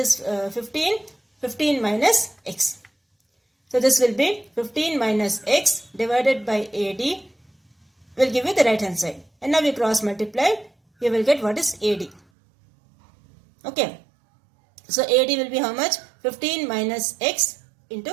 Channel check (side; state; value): left; drops out; at 12.2 s